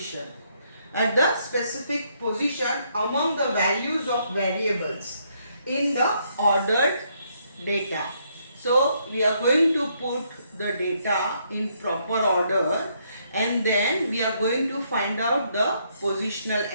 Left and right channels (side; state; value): both; inverted; correlation -0.73